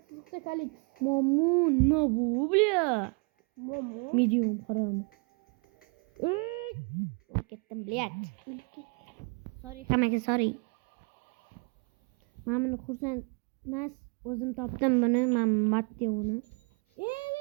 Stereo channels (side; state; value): left; quieter; 34.7 dB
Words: Kalix. Momo, no bu, bля. Momo. Medium qaram. Ketdim, блядь. Sorry hammaga, sorry. Men buni xursand emas, o'zim topdim buni, men Matteoni.